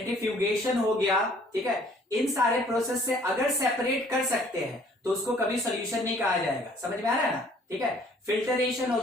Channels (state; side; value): normal; both; correlation 0.57